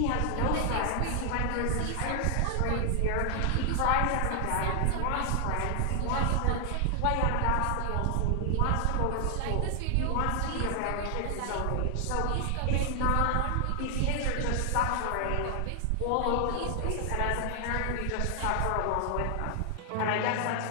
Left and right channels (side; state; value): both; different; correlation 0.00